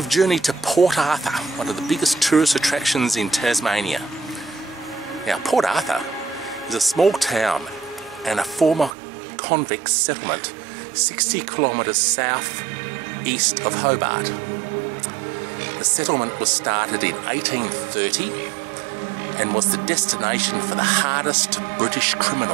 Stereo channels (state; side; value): drops out; left; at 8.9 s